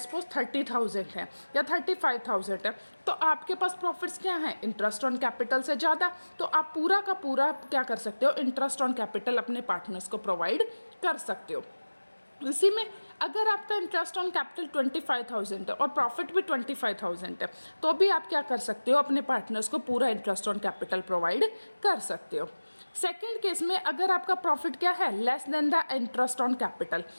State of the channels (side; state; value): both; inverted; correlation -1.00